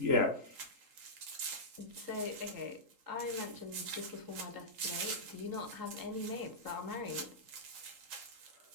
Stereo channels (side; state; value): left; late; 3.8 ms